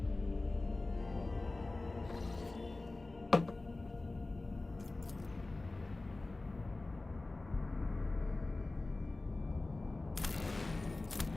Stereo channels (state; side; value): quieter; right; 3.1 dB